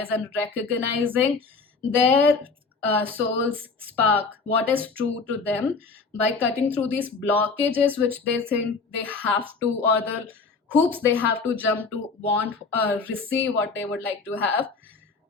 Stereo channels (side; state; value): right; quieter; 4.4 dB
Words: and recognizing their soul's spark, what is true to them, by cutting through these blockages which they think they have to, or the hoops they have to jump to want receive what they would like to have.